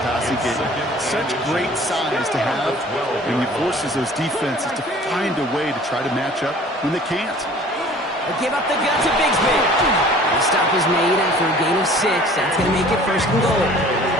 passing game. Such great size to have, and it forces those defenses to find a way to try to match up when they can't. They give up the gun to Bigsby. The stop is made after a gain of 6. That's going to make it 1st and goal.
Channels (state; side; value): normal; both; correlation 0.49